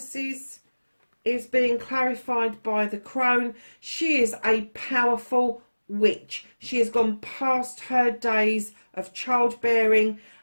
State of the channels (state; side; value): inverted; both; correlation -1.00